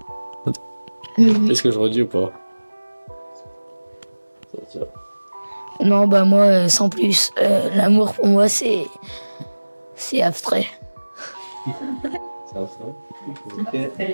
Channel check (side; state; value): both; inverted; correlation -1.00